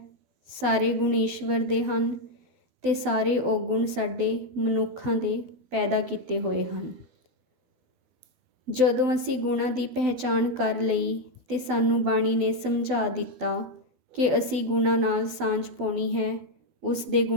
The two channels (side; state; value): left; late; 12 ms